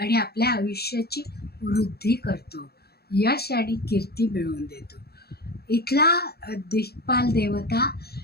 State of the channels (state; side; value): late; right; 0.46 ms